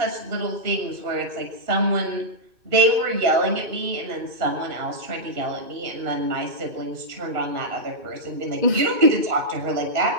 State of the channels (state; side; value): late; left; 2.6 ms